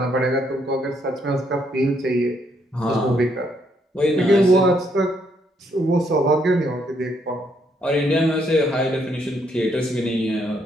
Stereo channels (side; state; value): both; normal; correlation 0.73